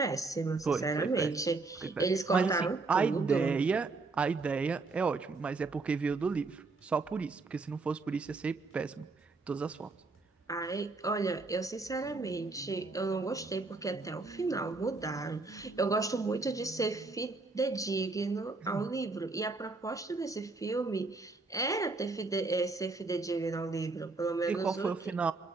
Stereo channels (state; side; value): quieter; left; 3.7 dB